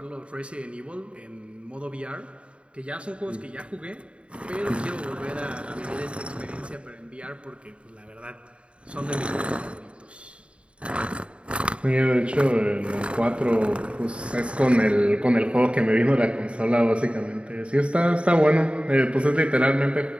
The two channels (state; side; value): late; left; 0.059 ms